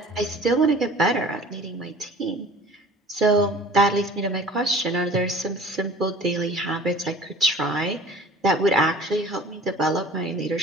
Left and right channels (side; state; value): both; normal; correlation 0.45